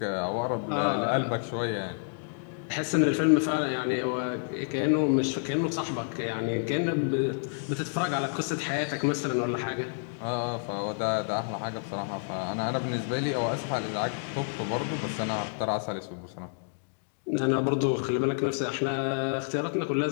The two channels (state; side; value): silent; right; digital silence